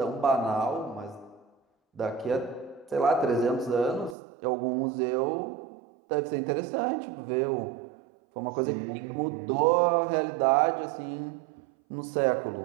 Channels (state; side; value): drops out; left; at 4.2 s